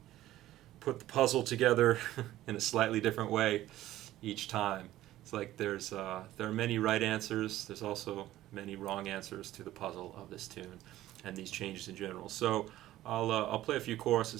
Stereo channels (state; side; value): quieter; left; 14.7 dB